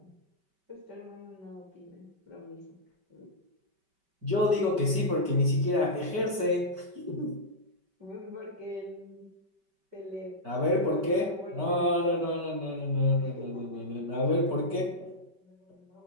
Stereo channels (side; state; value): left; late; 5.2 ms